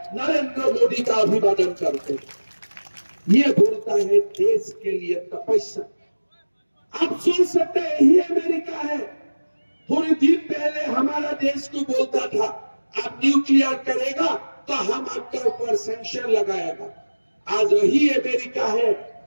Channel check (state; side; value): inverted; both; correlation -1.00